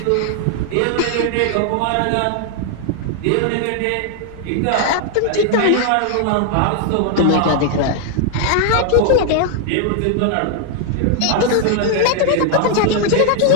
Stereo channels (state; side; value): different; both; correlation 0.00